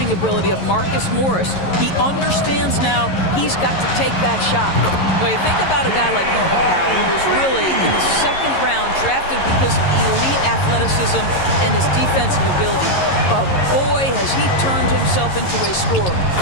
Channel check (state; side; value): late; right; 11 ms